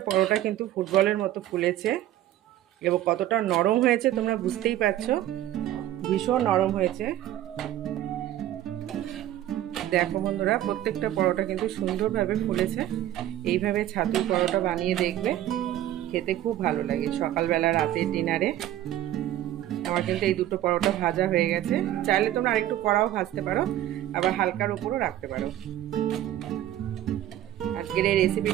পরোটা কিন্তু ফুটবলের মতো ফুলেছে এবং কতটা নরম হয়েছে তোমরা বুঝতেই পারছো, ভীষণ নরম হয়েছে। দেখো বন্ধুরা প্রত্যেকটা পরোটা কিন্তু সুন্দরভাবে ফুলেছে। এইভাবে ছাতুর পরোটা বানিয়ে দেখবে, খেতে খুব ভালো লাগে সকালবেলা, রাতের ডিনারে। আমার কিন্তু এই দুটো পরোটা ভাজা হয়ে গেছে। চাইলে তোমরা আরেকটু কড়াও ভাজতে পারো, আবার হালকার উপরও রাখতে পারো। আজকের এই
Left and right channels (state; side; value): quieter; left; 13.0 dB